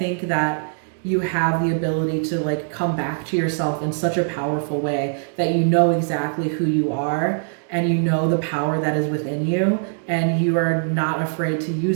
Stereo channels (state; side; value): silent; left; digital silence